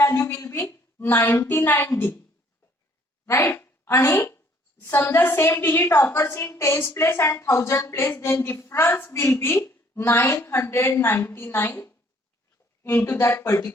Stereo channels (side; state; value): both; normal; correlation 0.61